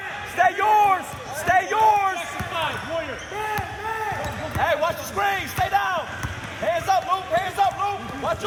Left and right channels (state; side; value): identical; both; correlation 1.00